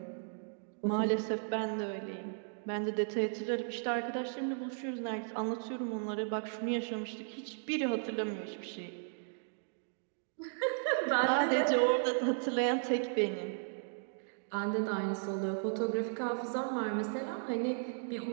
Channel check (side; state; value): left; silent; digital silence